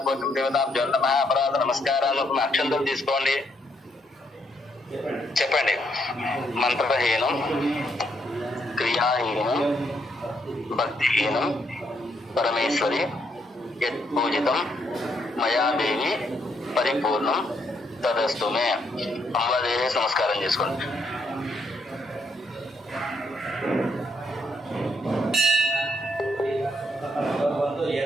పోషం దేవతాభ్యో నమః. అపరాధ నమస్కారాలు. అక్షంతలు తీసుకోండి. చెప్పండి. మంత్రహీనం, క్రియాహీనం, భక్తిహీనం పరమేశ్వరి యత్పూజితం మయా దేవి పరిపూర్ణం తదస్తుమే. అమ్మవారి నమస్కారం చేసుకోండి.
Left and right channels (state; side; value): normal; both; correlation 0.75